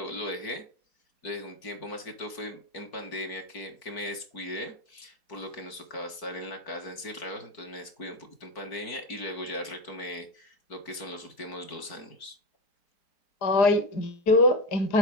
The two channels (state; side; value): late; right; 4.5 ms